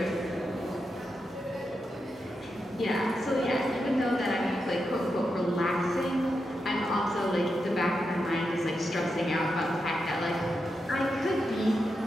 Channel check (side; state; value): both; normal; correlation 0.86